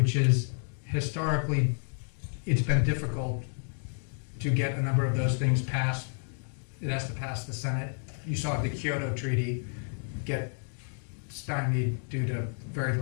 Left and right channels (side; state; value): right; silent; 58 dB below the other